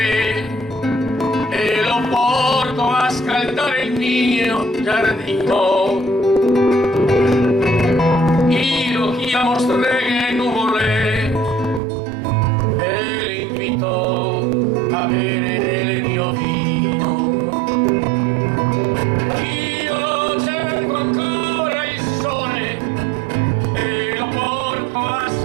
e lo porto a scaldare il mio giardino. Io chiamo streghe e nuvole e le invito a bere del mio vino. Io cerco ancora il sole e lo porto a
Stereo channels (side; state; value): left; drops out; at 11.8 s